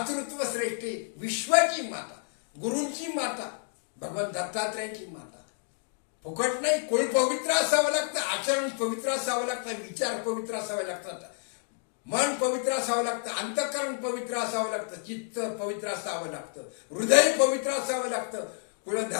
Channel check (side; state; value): right; silent; 58 dB below the other